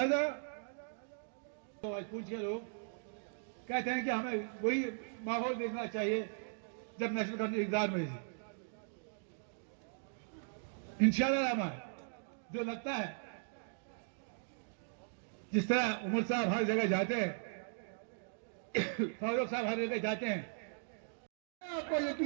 तो आज पूछ के लोग कहते हैं कि हमें वही माहौल देखना चाहिए जब नेशनल गवर्नमेंट इक़्तिदार में थी। इंशाल्लाह रहमान जो लगता है जिस तरह उमर साहब हर जगह जाते हैं, फारूक साहब हर जगह जाते हैं, मैं आपको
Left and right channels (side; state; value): left; silent; digital silence